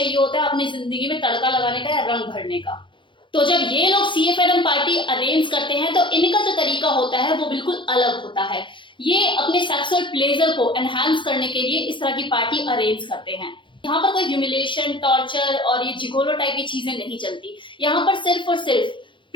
होता है अपनी जिंदगी में तड़का लगाने का या रंग भरने का। तो जब ये लोग CFNM पार्टी अरेंज करते हैं तो इनका जो तरीका होता है वो बिल्कुल अलग होता है। ये अपने सेक्सुअल प्लेजर को एनहांस करने के लिए इस तरह की पार्टी अरेंज करते हैं। यहाँ पर कोई ह्यूमिलेशन, टॉर्चर और ये जिगोलो टाइप की चीजें नहीं चलती। यहाँ पर सिर्फ और सिर्फ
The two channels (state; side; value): late; right; 0.24 ms